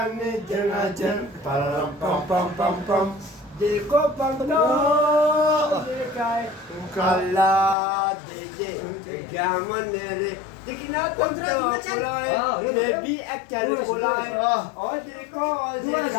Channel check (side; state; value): right; drops out; at 7.8 s